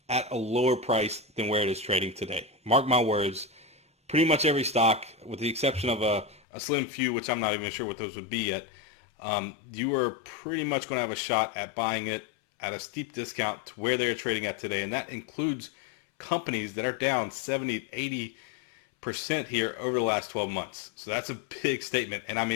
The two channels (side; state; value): right; drops out; at 6.4 s